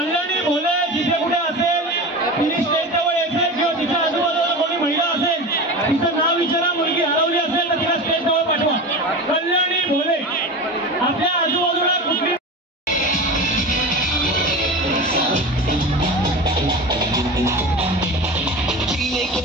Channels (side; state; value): both; normal; correlation 0.29